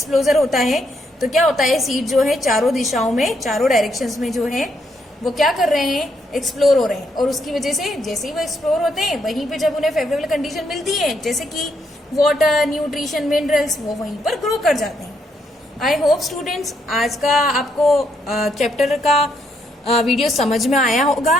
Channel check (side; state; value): both; normal; correlation 0.75